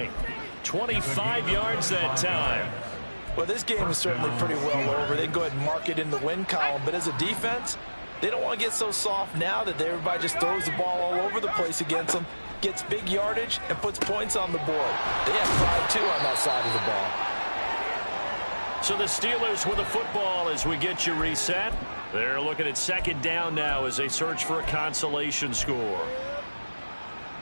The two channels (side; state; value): both; inverted; correlation -1.00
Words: 25 yards that time. Well, this game is certainly pretty well over. They can go ahead and mark it in the win column. But as a defense, they don't want to get so soft now that everybody just throws the ball all over the place against them, gets big yardage, and puts points on the board. They have pride, too, on that side of the ball. So the Steelers with the football as we get you reset. They're looking at second down now as they search for a consolation score.